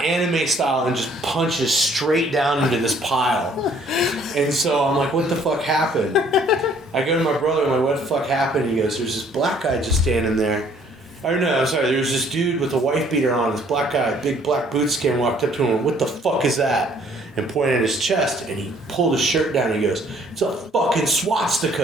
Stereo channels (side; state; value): both; normal; correlation 0.60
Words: anime style, and just punches straight down into this pile. And so I'm like, what the fuck happened? I go to my brother, I'm like, what the fuck happened? He goes, there's this black guy just standing there. Or no, I'm sorry, there was this dude with a wife beater on, this black guy, big black boot skin, walked up to him and what the fuck is that? And pointed at his chest, and he pulled his shirt down, and he goes, it's a fucking